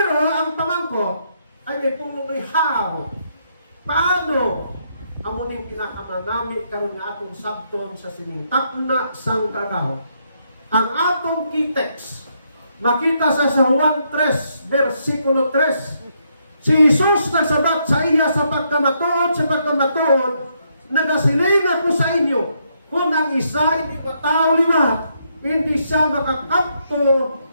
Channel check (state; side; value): inverted; both; correlation -0.76